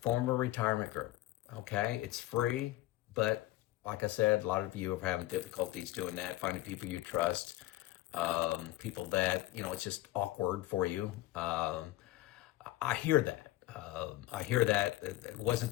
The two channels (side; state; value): right; quieter; 16.5 dB